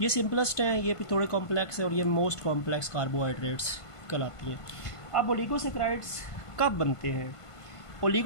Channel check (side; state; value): right; late; 1.5 ms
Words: ये सिंपलेस्ट हैं, ये फिर थोड़े कॉम्प्लेक्स हैं और ये मोस्ट कॉम्प्लेक्स कार्बोहाइड्रेट्स कहलाती हैं। अब ओलिगोसेक्राइड्स कब बनते हैं?